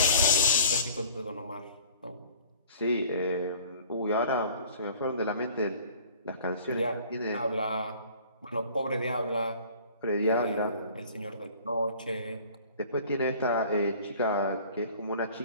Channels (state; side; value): inverted; both; correlation -0.49